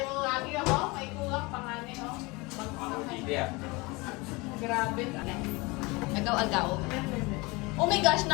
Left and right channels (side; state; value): right; quieter; 25.0 dB